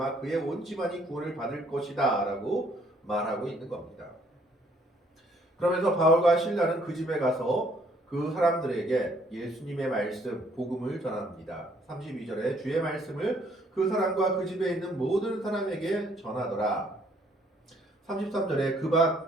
그의 온 집안이 구원을 받을 것이다 라고 말하고 있는 겁니다. 그러면서 바울과 실라는 그 집에 가서 그 사람들에게 예수님의 말씀, 복음을 전합니다. 32절에 주의 말씀을 그 사람과 그 집에 있는 모든 사람에게 전하더라.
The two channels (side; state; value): both; normal; correlation 0.65